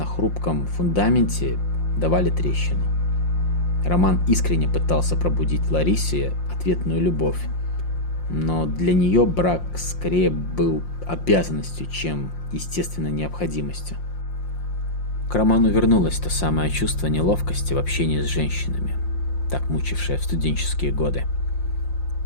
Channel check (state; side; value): late; right; 5.7 ms